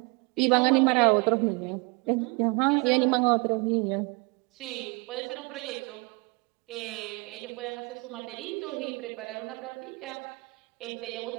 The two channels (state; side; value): quieter; left; 28.5 dB